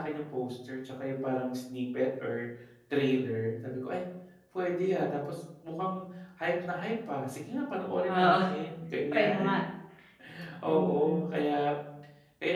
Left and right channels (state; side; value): identical; both; correlation 1.00